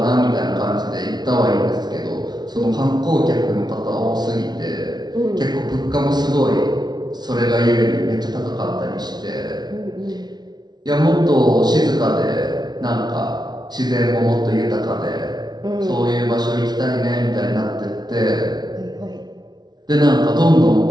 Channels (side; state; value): left; late; 0.20 ms